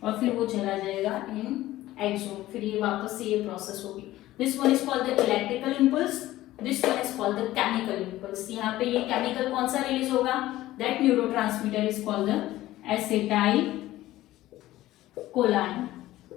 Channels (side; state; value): right; quieter; 15.7 dB